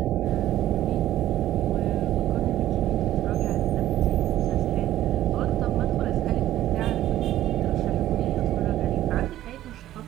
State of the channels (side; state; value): left; quieter; 13.4 dB